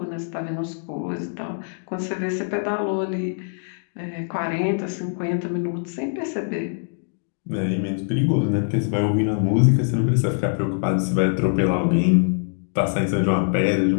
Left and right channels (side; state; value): right; silent; digital silence